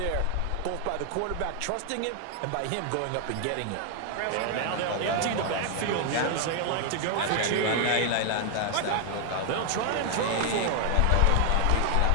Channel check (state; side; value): different; both; correlation 0.00